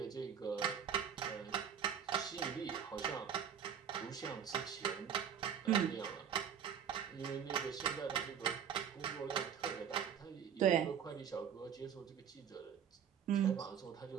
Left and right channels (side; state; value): left; quieter; 8.3 dB